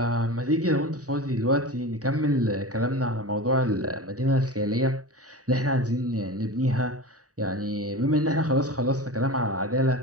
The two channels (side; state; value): left; late; 0.66 ms